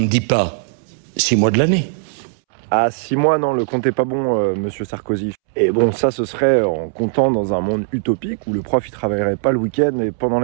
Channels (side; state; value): left; silent; 67 dB below the other